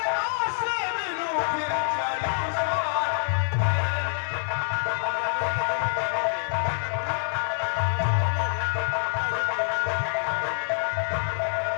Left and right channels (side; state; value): right; silent; 61 dB below the other